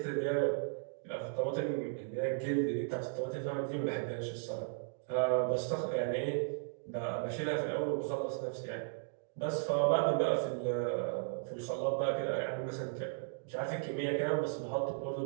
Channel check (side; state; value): left; silent; digital silence